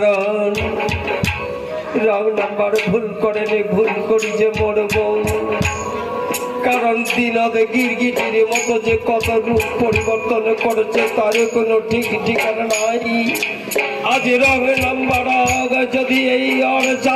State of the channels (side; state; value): both; identical; correlation 1.00